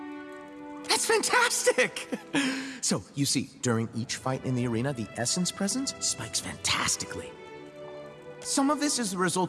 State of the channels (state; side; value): identical; both; correlation 1.00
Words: That's fantastic! So, you see, during each fight in the arena, the essence presence spikes fantastically. Some of this is the